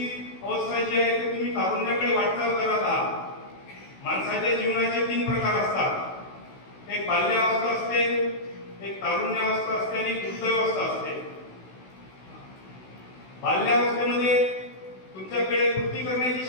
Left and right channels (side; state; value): right; late; 16 ms